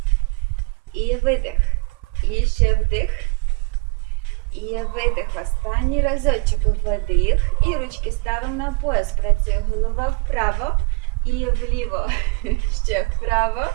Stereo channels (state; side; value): quieter; left; 30.8 dB